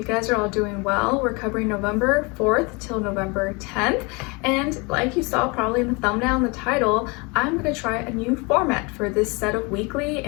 guys are all doing well. We're covering November 4th till November 10th. And like you saw probably in the thumbnail and the title, I'm going to try a new format for this set of weekly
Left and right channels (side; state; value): right; quieter; 28.6 dB